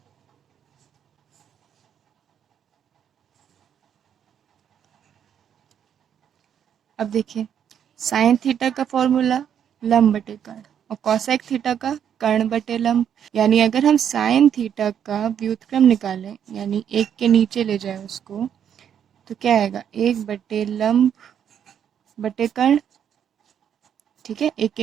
अब देखिए साइन थीटा का फॉर्मूला लंब बटे कर्ण और कॉसेक थीटा का कर्ण बटे लंब। यानी अगर हम साइन थीटा का व्युत्क्रम निकालें, यानी एक के नीचे ले जाए उसको, तो क्या आएगा, 1/लंब बटे कर्ण। ठीक है, एक के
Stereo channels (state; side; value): quieter; left; 8.8 dB